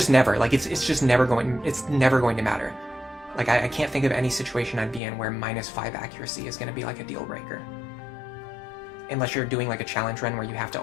never. Like, it's just never going... It's never going to matter. Like, I can't think of any situation I'd be in where minus 5 accuracy is going to be, like, a deal breaker. Unless you're doing, like, a challenge run where you have to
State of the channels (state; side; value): drops out; right; at 5.0 s